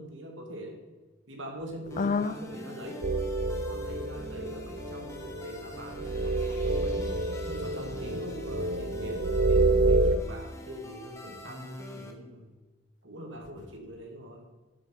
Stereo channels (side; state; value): both; normal; correlation 0.33